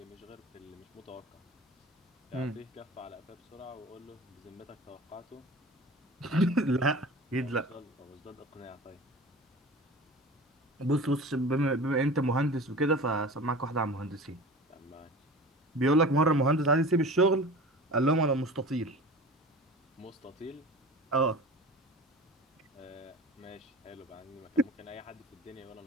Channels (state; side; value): normal; both; correlation 0.37